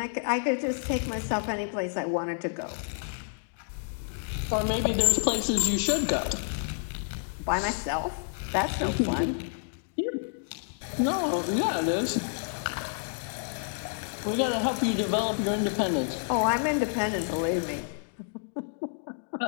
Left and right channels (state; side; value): silent; right; digital silence